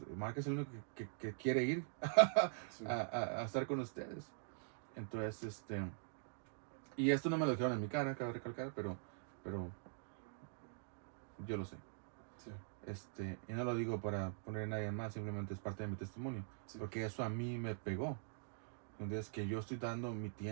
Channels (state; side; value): silent; left; digital silence